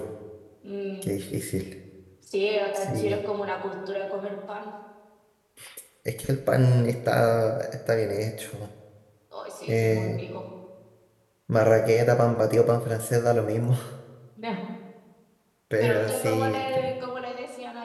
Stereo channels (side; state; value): both; identical; correlation 1.00